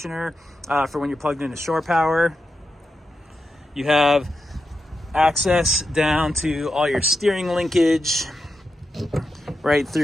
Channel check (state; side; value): normal; both; correlation 0.88